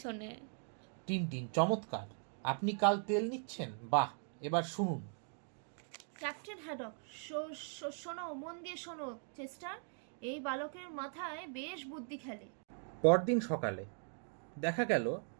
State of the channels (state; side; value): silent; left; 51 dB below the other